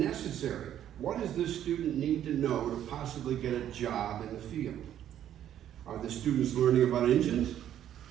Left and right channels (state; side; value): quieter; left; 10.8 dB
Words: What does this student need to know to possibly get a job in the field? Are the students learning about engines,